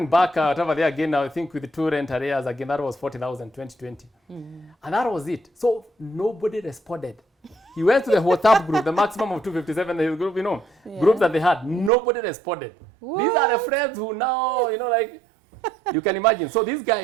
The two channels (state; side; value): drops out; left; at 11.9 s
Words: back whatever there again, I think with the 2 rent arrears again, that was 40,000, 2020. And that was it. So nobody responded. He went to the WhatsApp group, the maximum of 257 group, group that they had. Nobody responded. What? These are the friends who now, like, you can imagine. So this